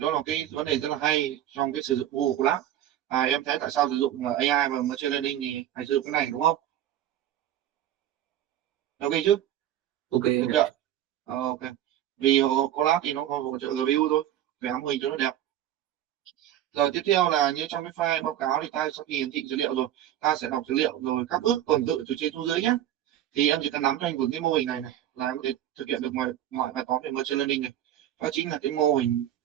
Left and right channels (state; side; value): quieter; left; 12.1 dB